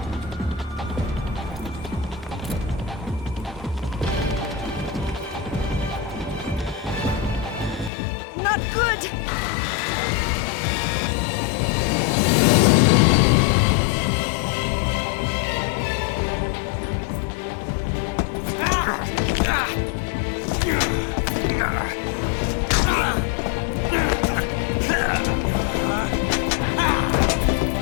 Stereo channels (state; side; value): drops out; right; at 7.9 s